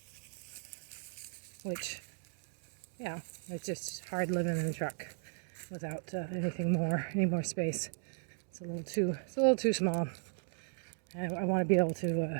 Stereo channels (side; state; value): left; silent; 54 dB below the other